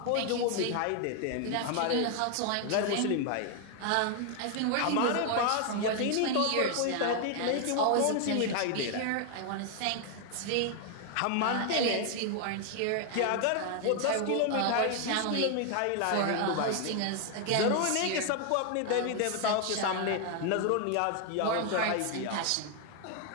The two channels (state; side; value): different; both; correlation 0.00